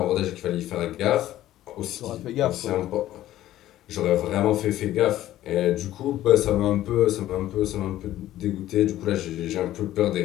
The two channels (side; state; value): right; quieter; 13.8 dB